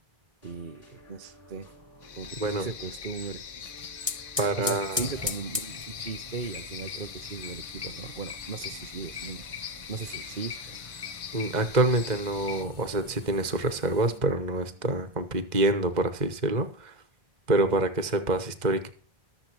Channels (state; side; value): late; left; 1.6 ms